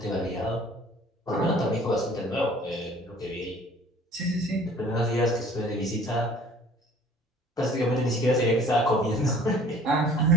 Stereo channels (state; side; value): normal; both; correlation 0.51